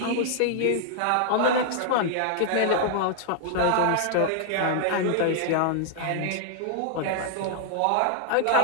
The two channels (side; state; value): both; different; correlation -0.01